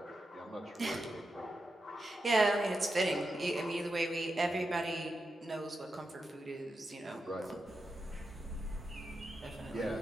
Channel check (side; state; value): both; normal; correlation 0.88